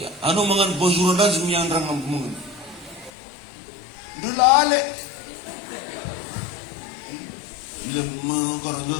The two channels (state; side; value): drops out; right; at 3.1 s